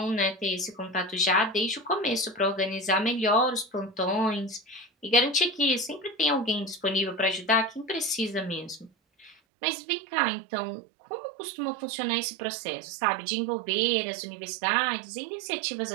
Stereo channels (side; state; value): left; drops out; at 9.3 s